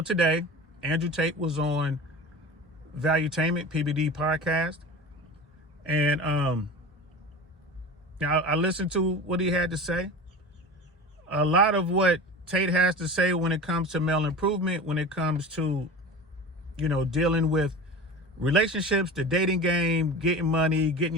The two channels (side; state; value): both; normal; correlation 0.33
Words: today, Andrew Tate was on Valuetainment, PBD podcast. And I listened to what he had to say. A lot of what Tate has to say when it comes to male improvement, when it comes to, dealing with relationships, the dating game, getting money,